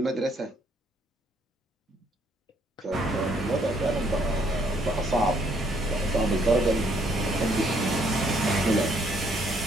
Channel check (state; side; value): normal; both; correlation 0.67